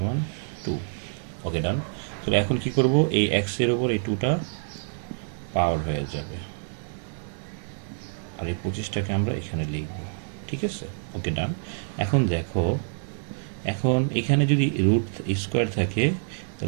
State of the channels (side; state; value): left; silent; digital silence